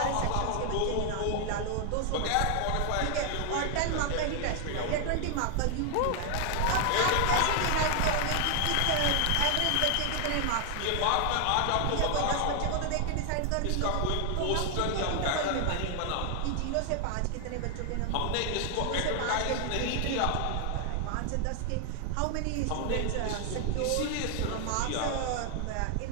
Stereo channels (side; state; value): both; different; correlation 0.00